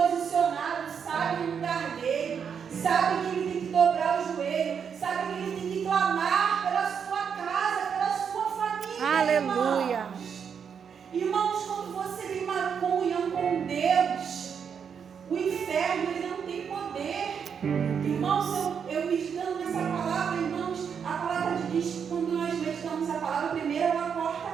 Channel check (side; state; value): left; quieter; 7.1 dB